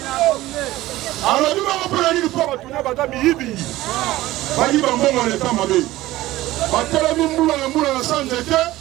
Alors, nous avons pris le port à tourner à Batami Ibi. Bali Bambo, on est en Mabé. Batami Moula, la Moula, la Sanjete,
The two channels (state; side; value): quieter; left; 16.7 dB